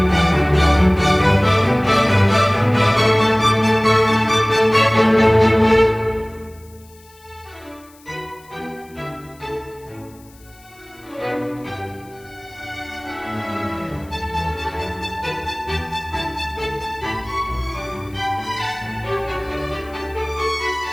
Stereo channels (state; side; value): noise; left; hiss, 27 dB below the sound